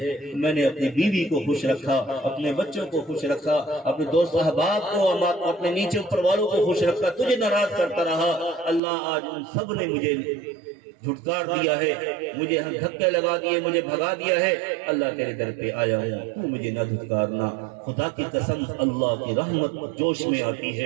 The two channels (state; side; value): drops out; left; at 8.8 s